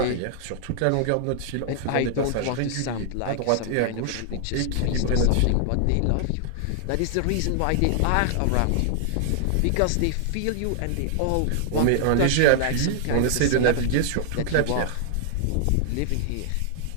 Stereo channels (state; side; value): different; both; correlation -0.01